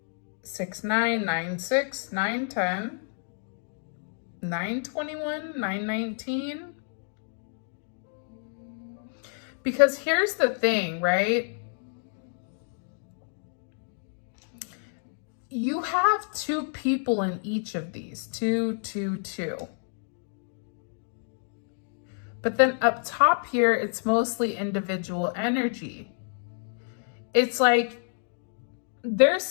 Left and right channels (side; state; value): right; silent; digital silence